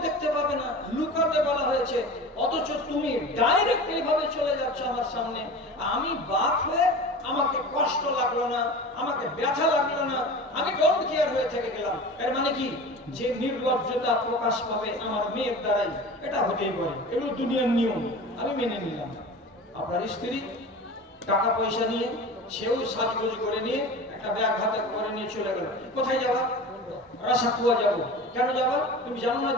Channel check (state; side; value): normal; both; correlation 0.35